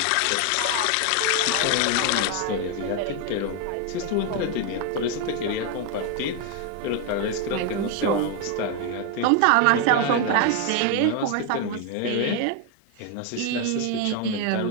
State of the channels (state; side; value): different; both; correlation 0.01